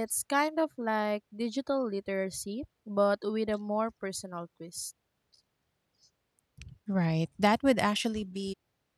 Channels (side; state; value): both; identical; correlation 1.00